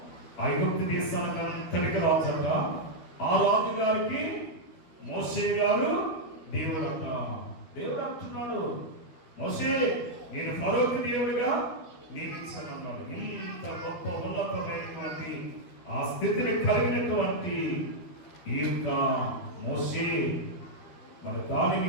ఐగుప్తు దేశానికి అంతటికి రాజట. ఆ రాజు గారికి మోషే గారు దేవుడు అంట. దేవుడు అంటున్నాడు, మోషే నేను ఫరోకు దేవుడిగా నియమించనున్నాడు. ఇంత గొప్ప ఉన్నతమైనటువంటి ఆ స్థితిని కలిగినటువంటి ఈ యొక్క మోషే మరి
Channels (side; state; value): right; late; 12 ms